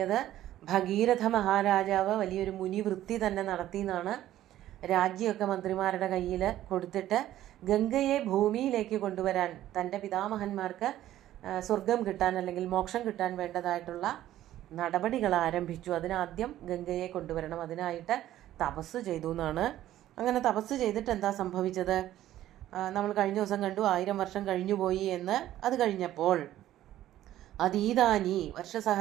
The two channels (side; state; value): left; quieter; 13.3 dB